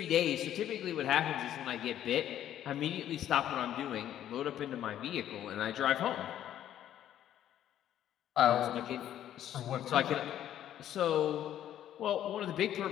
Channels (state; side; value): quieter; right; 11.3 dB